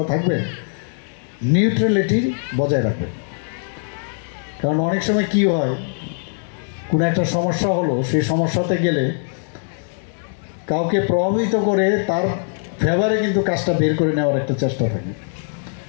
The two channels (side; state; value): right; silent; digital silence